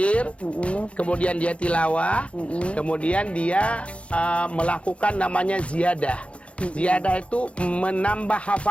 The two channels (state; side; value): late; right; 0.061 ms